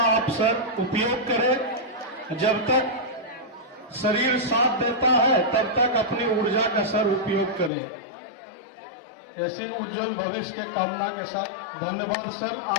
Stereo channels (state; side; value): drops out; right; at 7.7 s